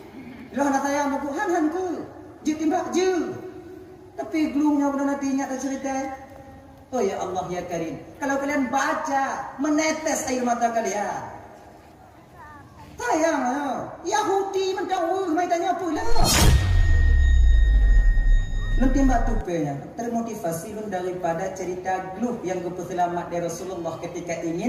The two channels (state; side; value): identical; both; correlation 1.00